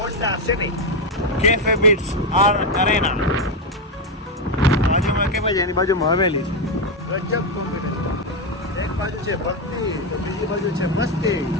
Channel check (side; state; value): both; normal; correlation 0.07